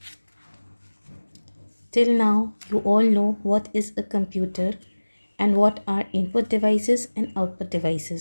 Till now, you all know what is a computer and what are input devices and output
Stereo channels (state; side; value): inverted; both; correlation -1.00